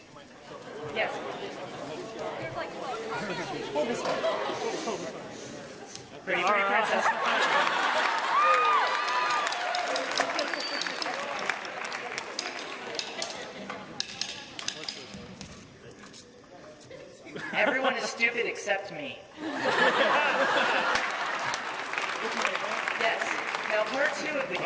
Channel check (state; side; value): identical; both; correlation 1.00